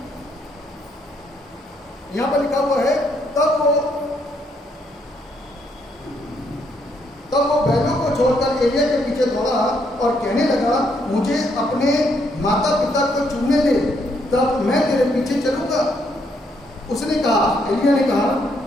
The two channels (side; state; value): both; normal; correlation 0.73